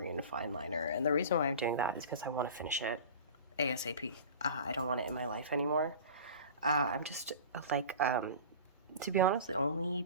fine liner. And the reason why I'm doing that is because I want to finish it ASAP. I don't want it in my life anymore. I'm just like, to be honest, the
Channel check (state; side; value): inverted; both; correlation -0.37